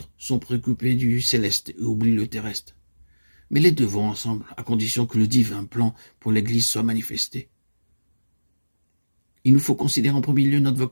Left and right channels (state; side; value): inverted; both; correlation -1.00